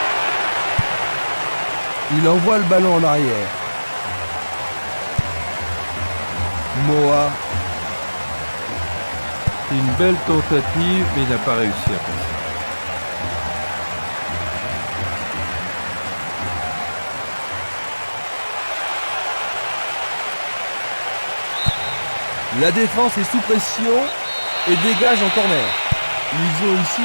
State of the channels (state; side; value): inverted; both; correlation -1.00